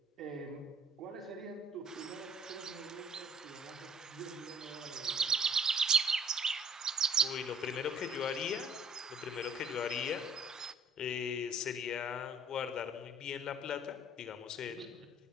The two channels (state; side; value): normal; both; correlation 0.57